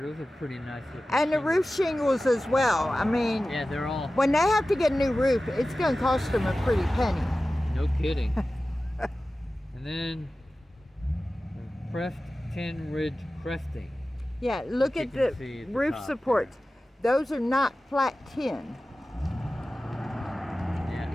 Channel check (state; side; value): normal; both; correlation 0.95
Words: Those are pretty nice looking. And the shingles. roof shingles as well. I mean, Yeah, they're all. when they have to get a new roof, it's going to cost them a pretty penny. No kidding. And then the pressed tin ridge cresting. Yeah, look You at can the see at the roof top supports. Those are not flat tin.